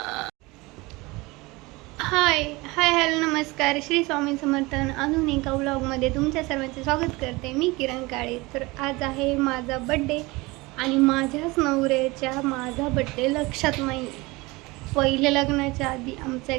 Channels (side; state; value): left; quieter; 23.0 dB